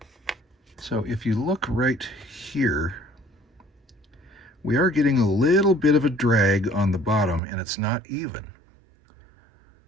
So if you look right here, we are getting a little bit of a drag on the bottom, and it's not even.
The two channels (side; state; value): left; drops out; at 7.4 s